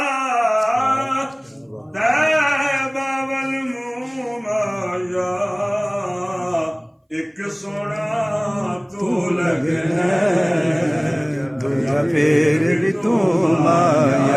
پھر بھی تم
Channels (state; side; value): identical; both; correlation 1.00